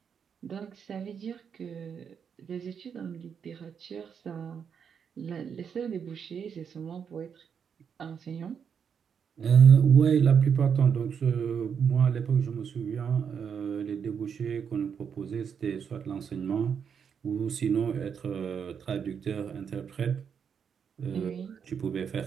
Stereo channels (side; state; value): left; quieter; 7.1 dB